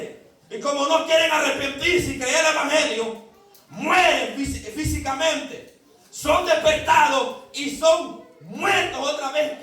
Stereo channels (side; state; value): both; identical; correlation 1.00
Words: Y como no quieren arrepentirse y creer el evangelio, mueren físicamente. Son despertados y son muertos otra vez,